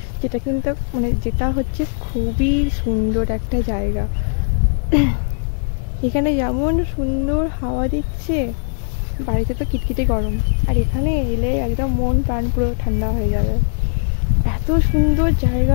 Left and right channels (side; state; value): right; silent; digital silence